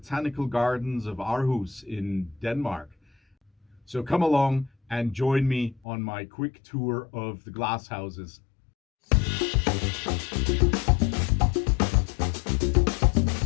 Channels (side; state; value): right; drops out; at 5.8 s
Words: gardens of Aarhus in Denmark. So come along and join me on my quick tour of the glasshouses.